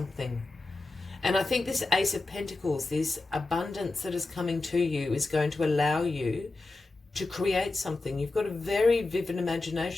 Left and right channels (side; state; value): right; quieter; 3.3 dB